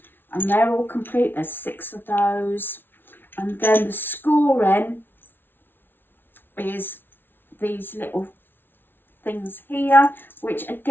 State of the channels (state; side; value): late; right; 0.10 ms